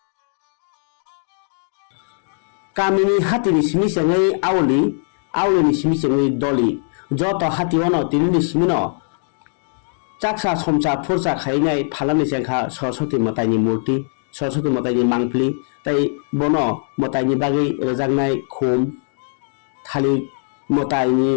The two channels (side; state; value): right; silent; digital silence